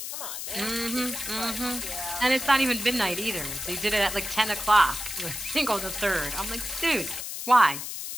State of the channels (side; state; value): left; noise; hiss, 6 dB below the sound